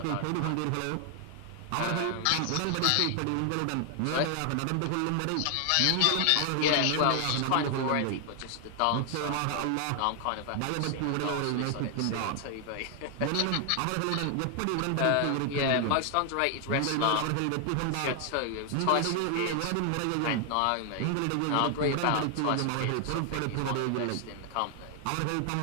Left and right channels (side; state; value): both; different; correlation 0.00